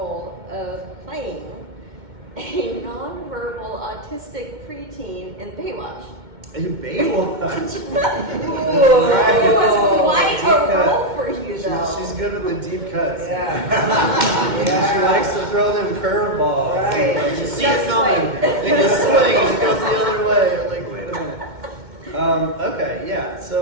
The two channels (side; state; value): left; late; 2.2 ms